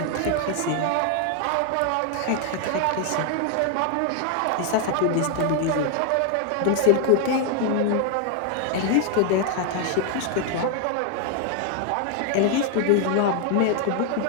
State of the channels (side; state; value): both; different; correlation 0.00